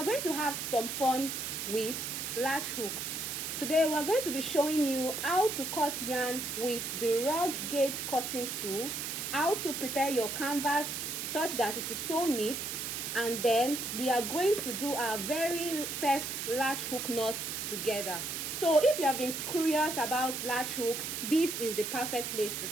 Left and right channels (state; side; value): noise; right; hiss, 4 dB below the sound